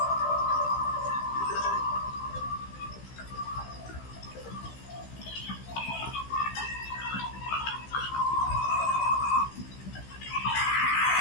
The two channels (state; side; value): late; right; 15 ms